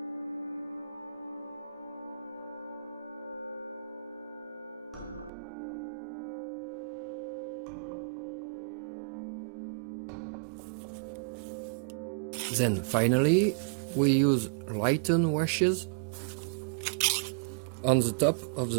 Then finally, we use lighten washes on the top of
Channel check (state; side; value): drops out; left; at 5.3 s